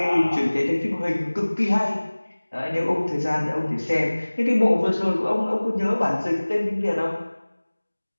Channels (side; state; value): both; inverted; correlation -1.00